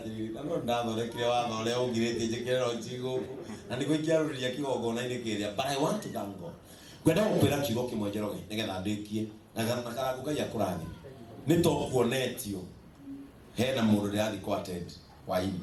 No ndathondekire watho ule ungirite njikero njigo. Na niko ikiaruria kigogo na ini kiria. But I want to thank God. Gwenda gukwira kiugo kimwe Njoroge nigetha ndikie na karangu Ngai akurathime. Ni tokuonetio hena mundu ndiathi ku attend waini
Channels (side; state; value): both; identical; correlation 1.00